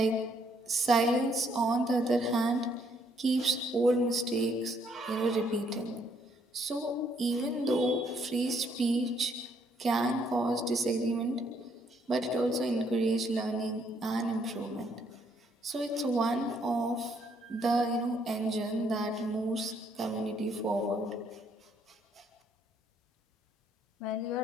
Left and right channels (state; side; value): normal; both; correlation 0.69